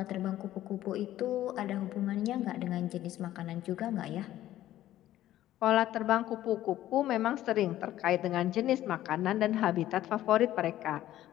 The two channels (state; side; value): quieter; right; 13.6 dB